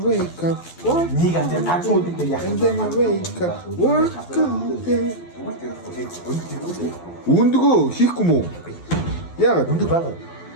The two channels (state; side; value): late; right; 12 ms